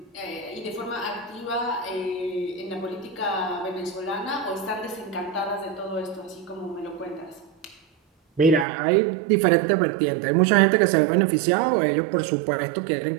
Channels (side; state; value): left; drops out; at 8.7 s